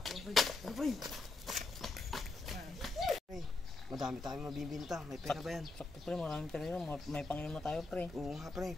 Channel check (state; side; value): quieter; right; 3.2 dB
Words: pre. Ano pre? Pre, madami tayong mabibinta. May pera ba yan? Sakto pre, maraming pera yun. May panginom na tayo pre. Oo nga pre,